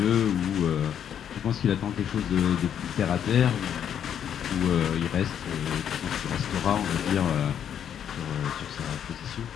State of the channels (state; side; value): quieter; right; 9.1 dB